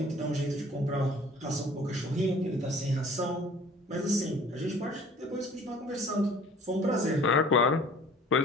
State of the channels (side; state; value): both; normal; correlation 0.50